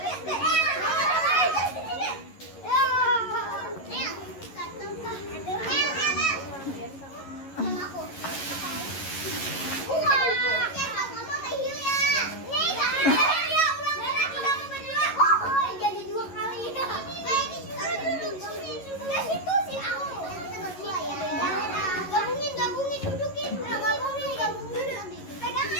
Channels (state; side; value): late; right; 11 ms